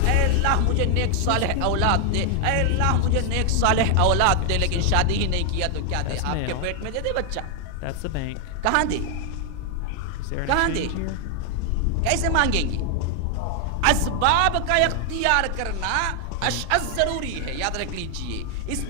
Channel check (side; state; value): both; different; correlation 0.00